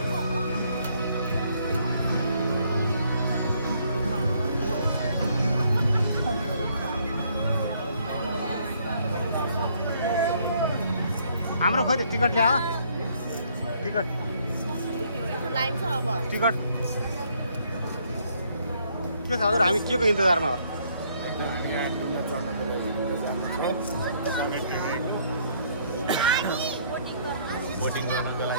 हाम्रो खोइ त टिकट ल्यायो टिकट लाइन छ अब टिकट के छ हजुर हामी के को इन्तजारमा हो बोटिङ गर्नको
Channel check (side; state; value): both; inverted; correlation -0.67